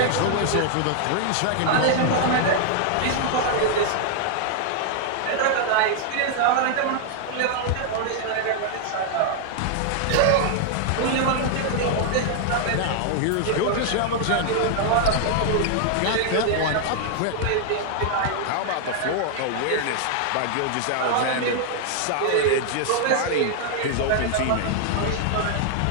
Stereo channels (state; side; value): different; both; correlation 0.00